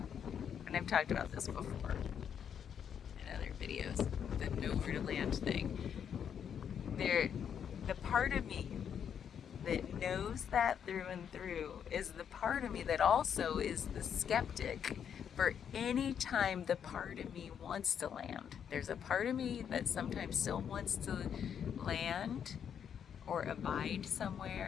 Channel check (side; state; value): right; quieter; 8.2 dB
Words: And I've talked about this before in other videos, the nowhere to land thing. The part of me that knows that through and through is the part of me that also is the skeptic for any time the part of me wants to land. There's a part of me that sometimes still wants to land or abide